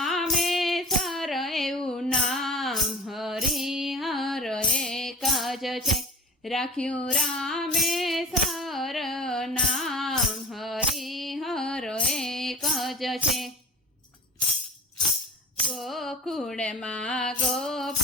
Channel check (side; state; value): both; normal; correlation 0.37